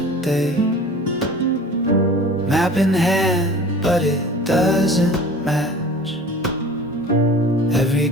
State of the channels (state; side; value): normal; both; correlation 0.42